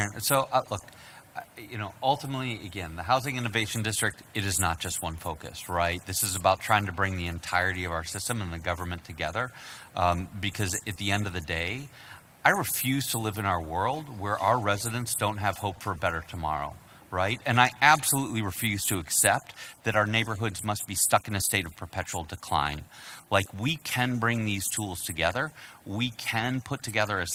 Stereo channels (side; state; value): both; identical; correlation 1.00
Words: So, look, ultimately, again, the Housing Innovation District, it is not just one focus, right? This is about trying to bring the entirety of our system and the government together, because at the end of the day, I refuse to live in our world where our residents don't have hope for a better tomorrow, right? And I absolutely refuse to accept that our neighborhoods must be stuck in a state of perpetual decline. Like, we can bring these tools together. We can put together a